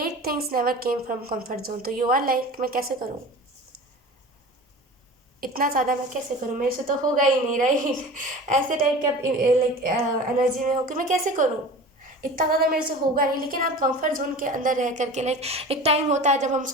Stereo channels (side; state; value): both; normal; correlation 0.37